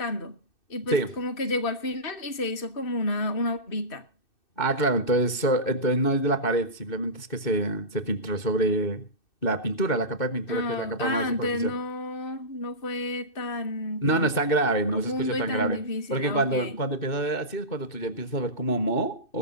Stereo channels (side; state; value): right; late; 2.6 ms